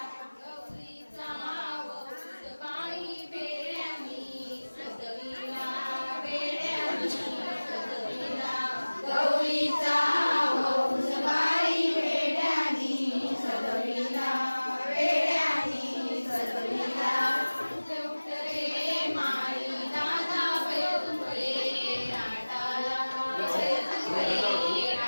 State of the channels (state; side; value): inverted; both; correlation -1.00